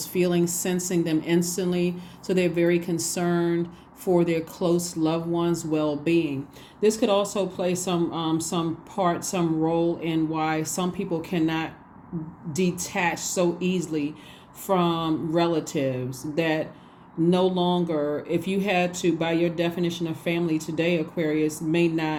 feelings, sensing them instantly. So they're very concerned for their close loved ones' well-being. This could also play some role in why some people cannot detach so easily from relatives that no longer, if you had to, by your definition of family today, Aquarius, may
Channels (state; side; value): identical; both; correlation 1.00